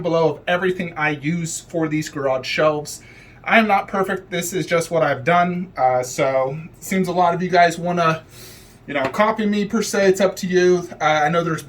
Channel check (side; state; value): both; identical; correlation 1.00